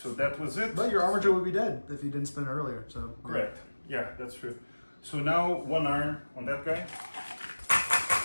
that was it. But your armature would be dead if you didn't spin earlier. So Correct. Yeah, that's true. So now 1 arm on that guy.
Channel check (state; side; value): inverted; both; correlation -1.00